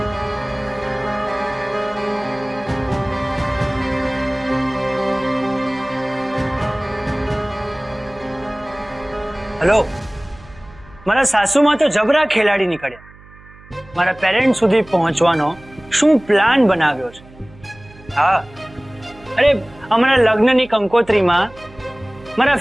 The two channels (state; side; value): noise; right; hum, 23 dB below the sound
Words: હેલો, મારા સાસુમાં તો જબરા ખેલાડી નીકળ્યા. મારા પેરેન્ટ સુધી પહોંચવાનો શું પ્લાન બનાવ્યો છે? હા, અરે અમારા લગ્નની કંકોત્રીમાં મારા